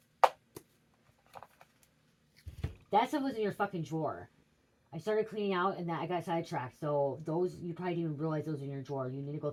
That stuff was in your fucking drawer. I started cleaning out and I got sidetracked. So those, you probably didn't even realize those were in your drawer. You need to go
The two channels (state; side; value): identical; both; correlation 1.00